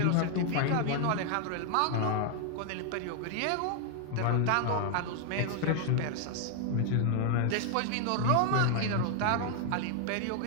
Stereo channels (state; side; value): different; both; correlation 0.00